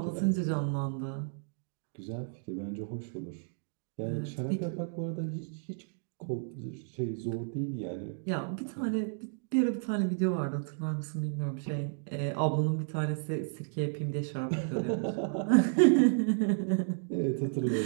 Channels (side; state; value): left; silent; digital silence